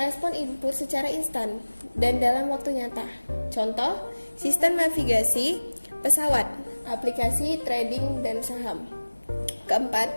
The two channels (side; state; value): both; inverted; correlation -1.00